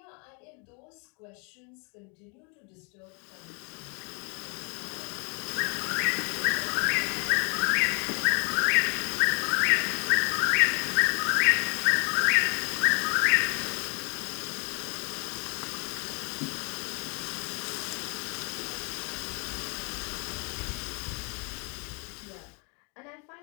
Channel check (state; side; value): quieter; right; 35.4 dB